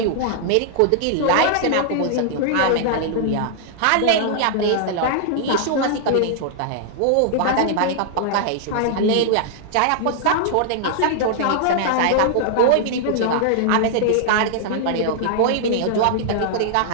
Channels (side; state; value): both; different; correlation -0.01